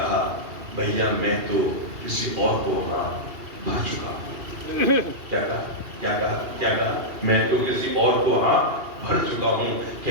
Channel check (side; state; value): left; late; 2.8 ms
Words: भैया मैं तो किसी और को वहां भर चुका हूं। क्या कहा? क्या कहा? क्या कहा? मैं तो किसी और को वहां भर चुका हूं।